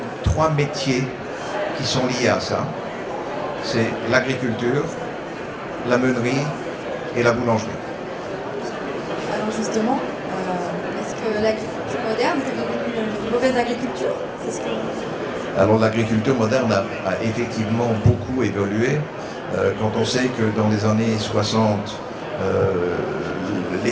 métiers qui sont liés à ça. C'est l'agriculture, la meunerie et la boulangerie. Alors justement, est-ce que l'agriculture moderne est devenue une mauvaise agriculture? Alors l'agriculture moderne a effectivement beaucoup évolué. Quand on sait que dans les années 60,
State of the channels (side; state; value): both; identical; correlation 1.00